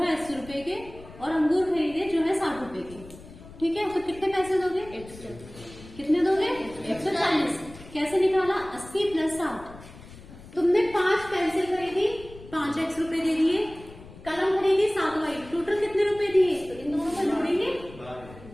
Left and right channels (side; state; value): left; noise; rumble, 18 dB below the sound